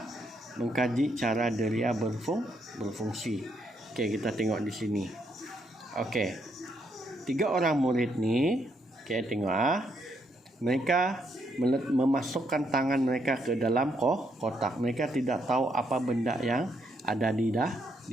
mengkaji cara deria berfungsi. Okey, kita tengok di sini. Okey. 3 orang murid ni, okey, tengok mereka memasukkan tangan mereka ke dalam kotak. Mereka tidak tahu apa benda yang ada di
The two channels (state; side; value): normal; both; correlation 0.75